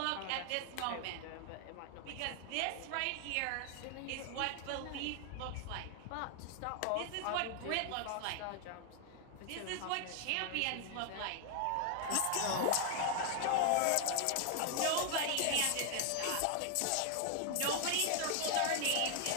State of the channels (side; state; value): both; different; correlation 0.00